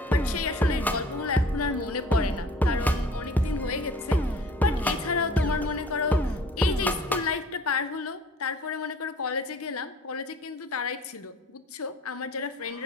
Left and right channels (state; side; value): normal; both; correlation 0.49